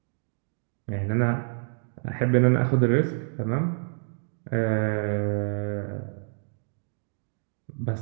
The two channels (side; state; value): left; silent; 60 dB below the other